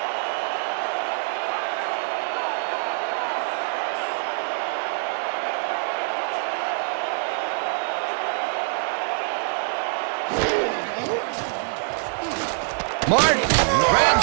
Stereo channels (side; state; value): left; silent; digital silence